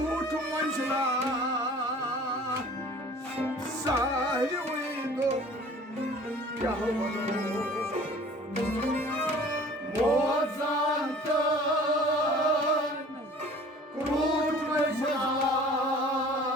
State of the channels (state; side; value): normal; both; correlation 0.48